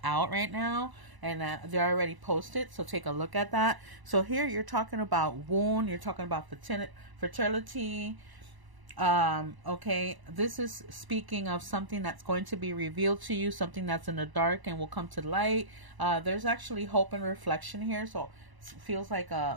out right now, and they're already posted, so take a look at that. So here you're talking about wound, you're talking about fertility, Okay, this is speaking of something that's going to be revealed to you, something that's in the dark and will come to light. There's actually hope and reflection here, so it feels like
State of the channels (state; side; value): late; left; 1.0 ms